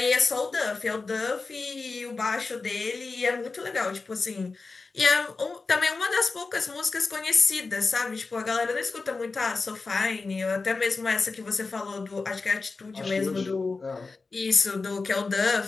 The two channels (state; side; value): quieter; right; 4.1 dB